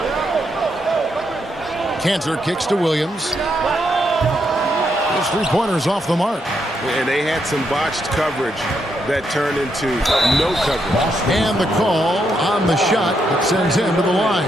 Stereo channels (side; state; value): both; normal; correlation 0.79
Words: Cantor kicks to Williams. His 3-pointers off the mark. And they had some botched coverage that turned into no coverage. And the call on the shot that sends him to the